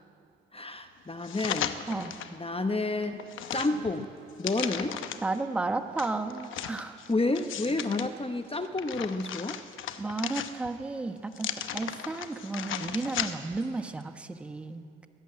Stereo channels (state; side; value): normal; both; correlation 0.64